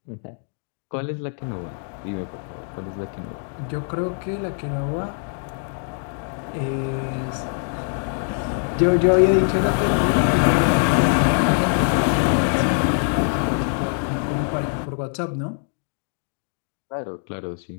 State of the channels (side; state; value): right; silent; 63 dB below the other